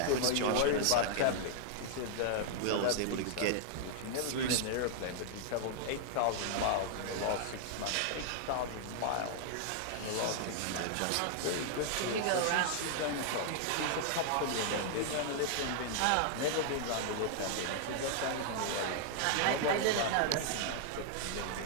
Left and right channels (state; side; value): different; both; correlation -0.01